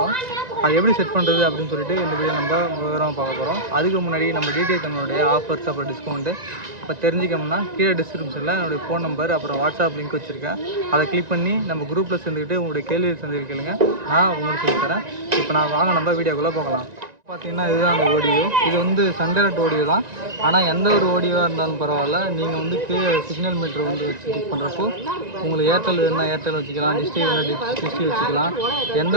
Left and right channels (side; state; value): left; late; 1.9 ms